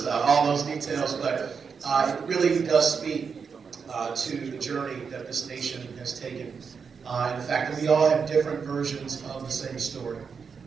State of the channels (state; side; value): quieter; left; 5.9 dB